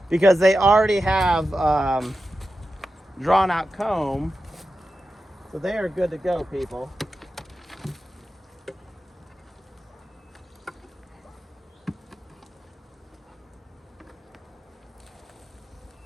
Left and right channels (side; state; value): both; normal; correlation 0.91